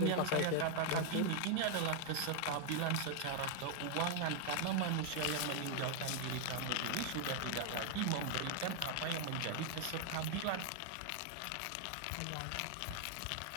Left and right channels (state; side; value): different; both; correlation 0.00